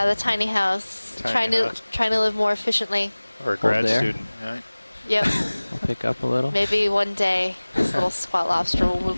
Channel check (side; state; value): both; inverted; correlation -1.00